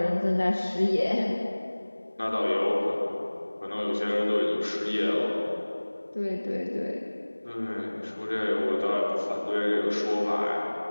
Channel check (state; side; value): inverted; both; correlation -1.00